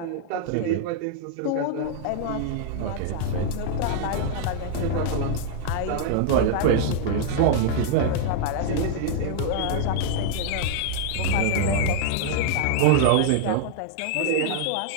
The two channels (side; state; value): both; different; correlation -0.01